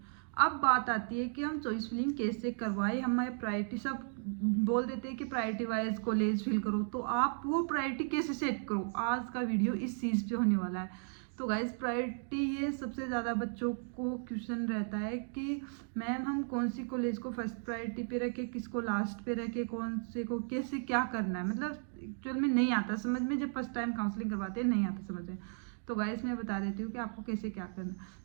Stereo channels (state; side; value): silent; left; 54 dB below the other